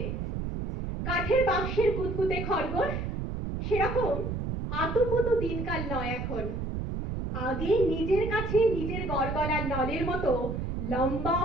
কাঠের বাক্সের কুতকুতে খরগোশ সেরকম আতুপুতু দিনকাল নয় এখন। আগে নিজের কাছে নিজের গড়গড়ার নলের মতো লম্বা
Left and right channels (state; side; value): noise; right; rumble, 3 dB below the sound